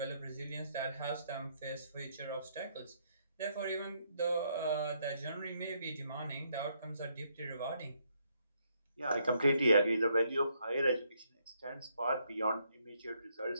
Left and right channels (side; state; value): both; inverted; correlation -0.73